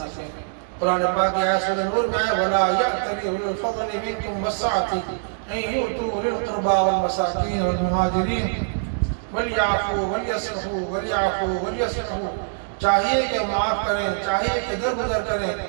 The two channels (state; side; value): silent; left; digital silence